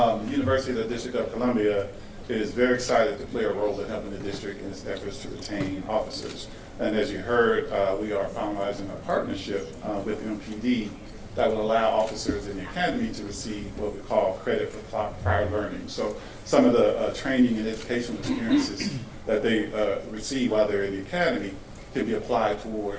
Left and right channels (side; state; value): both; identical; correlation 1.00